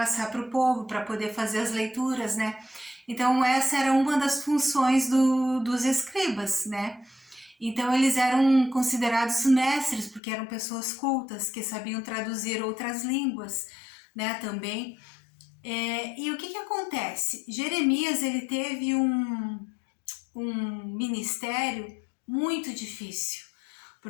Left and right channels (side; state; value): right; drops out; at 10.2 s